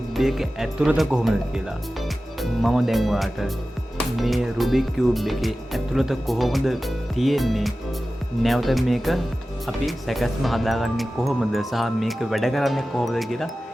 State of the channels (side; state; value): both; normal; correlation 0.95